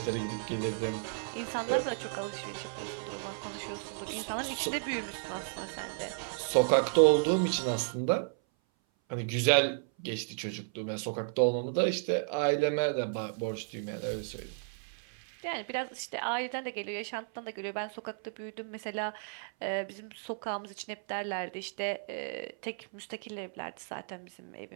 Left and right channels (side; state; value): left; silent; 55 dB below the other